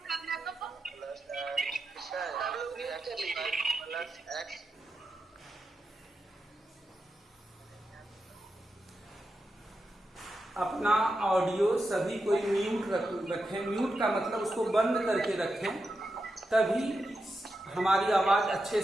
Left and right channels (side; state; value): both; normal; correlation 0.88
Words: अपना ऑडियो सभी कोई म्यूट रखें। म्यूट का मतलब उसको बंद करके रखें, तभी हमारी आवाज अच्छे